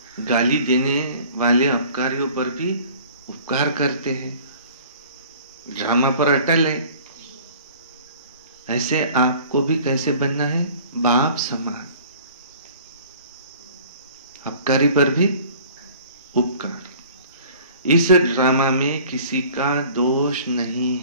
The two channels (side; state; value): both; inverted; correlation -0.48